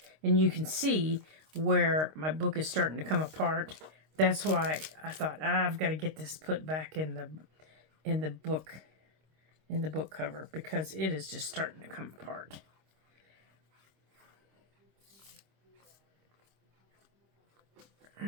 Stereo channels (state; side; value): late; left; 26 ms